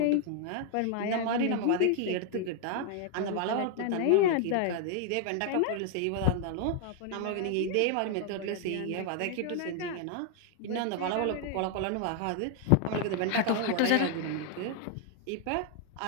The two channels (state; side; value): different; both; correlation 0.00